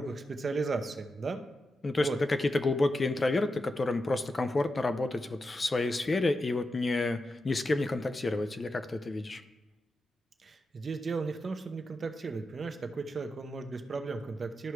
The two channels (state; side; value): normal; both; correlation 0.88